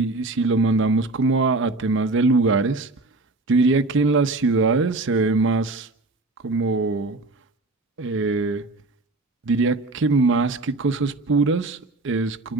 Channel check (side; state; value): left; quieter; 3.1 dB